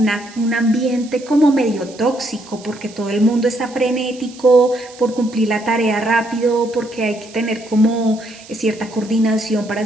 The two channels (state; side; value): noise; right; hiss, 21 dB below the sound